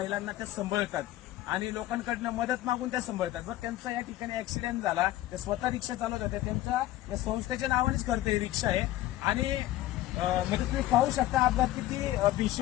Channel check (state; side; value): quieter; right; 15.1 dB